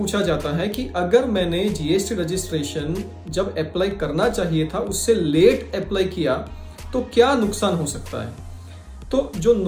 जाता है कि अगर मैंने जीएसटी रजिस्ट्रेशन जब अप्लाई करना चाहिए था उससे लेट अप्लाई किया तो क्या नुकसान हो सकता है। तो जो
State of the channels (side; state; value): both; identical; correlation 1.00